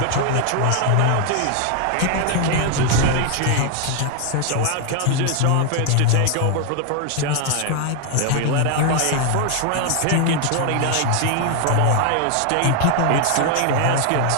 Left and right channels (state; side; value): different; both; correlation 0.00